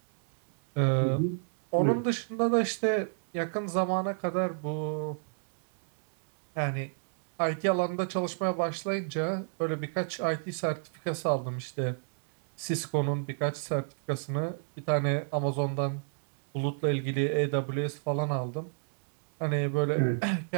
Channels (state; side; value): silent; left; digital silence